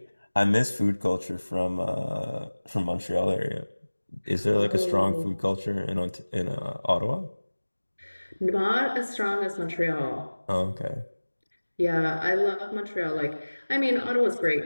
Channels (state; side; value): inverted; both; correlation -1.00